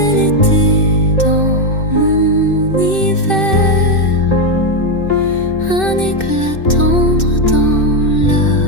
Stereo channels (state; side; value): late; right; 2.6 ms